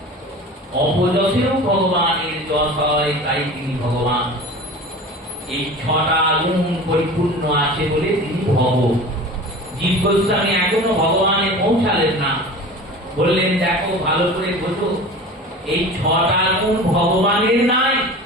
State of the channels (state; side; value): normal; both; correlation 0.36